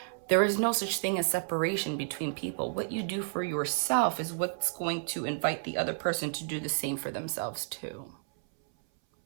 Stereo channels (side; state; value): left; silent; 57 dB below the other